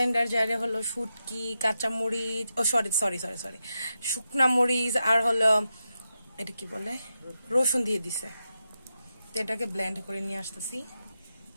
জারে হলো শুটকি, কাঁচা মরিচ, সরি শুকনা মরিচ আর হলো এটা কি বলে রসুন দিয়ে দিছে। তো এটাকে ব্লেন্ড করে নিয়ে আসতেছি।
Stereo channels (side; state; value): both; inverted; correlation -0.88